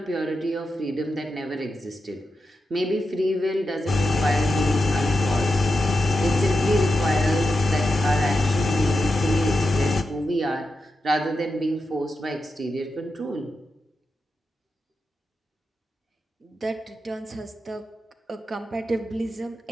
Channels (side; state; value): both; normal; correlation 0.89